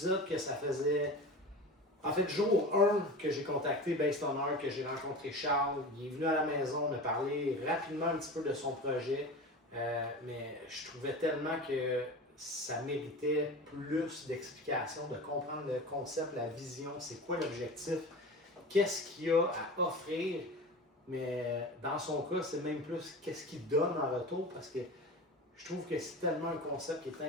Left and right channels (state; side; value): normal; both; correlation 0.32